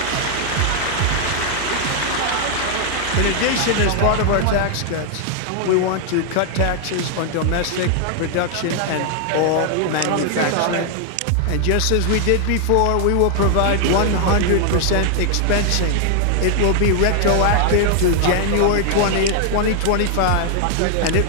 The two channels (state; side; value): different; both; correlation 0.00